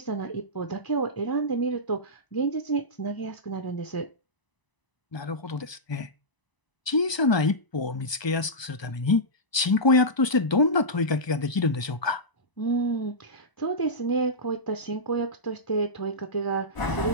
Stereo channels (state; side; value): late; right; 1.2 ms